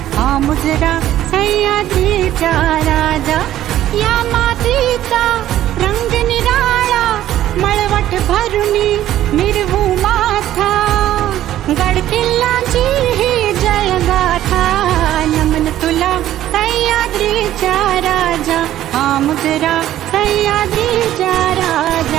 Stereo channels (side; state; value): left; quieter; 12.9 dB